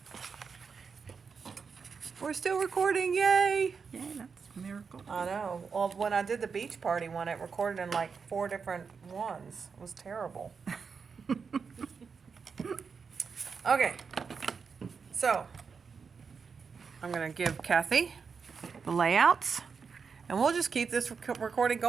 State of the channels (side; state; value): left; quieter; 5.6 dB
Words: We're still recording, yay! Yeah, that's Miracle. I know. Well, when I did the beach party one, it recorded in like 4 different ones. It was terrible. Okay. So, I'm going to give Kathy the layouts, and we'll just keep this recording